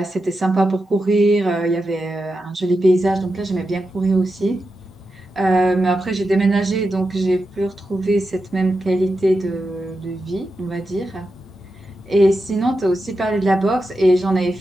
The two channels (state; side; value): normal; both; correlation 0.89